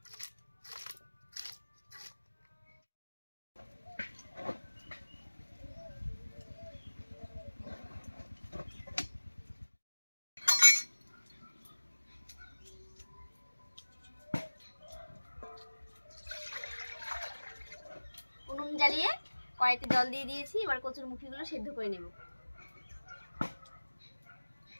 উনুন জ্বালিয়ে কড়াইতে জল দিয়ে দিয়েছি। এবার কচুর মুখিগুলো সেদ্ধ করে নেব।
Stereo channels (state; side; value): inverted; both; correlation -1.00